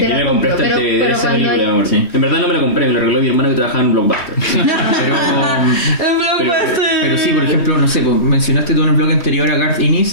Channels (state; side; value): late; right; 3.2 ms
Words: te la compro, pero cuando hay... En verdad no me la compré, me la regaló mi hermano que trabajaba en Blockbuster. pero sí, por ejemplo, no sé, pues, mencionaste tú en el blog anterior a Garth